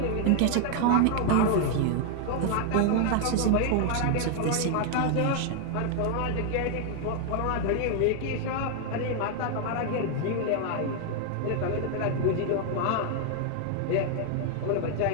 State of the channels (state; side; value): different; both; correlation 0.00